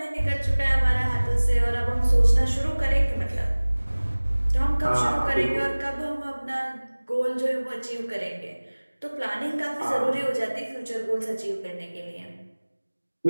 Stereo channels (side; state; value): both; inverted; correlation -1.00